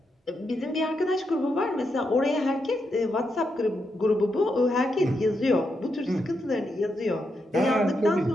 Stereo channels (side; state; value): both; normal; correlation 0.83